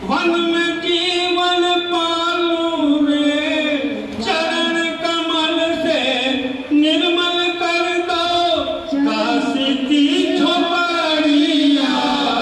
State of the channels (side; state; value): both; identical; correlation 1.00